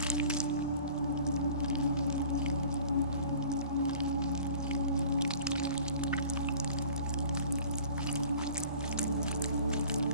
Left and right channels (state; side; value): inverted; both; correlation -0.46